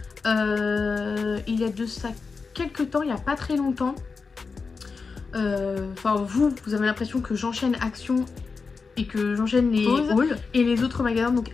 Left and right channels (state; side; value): quieter; right; 4.7 dB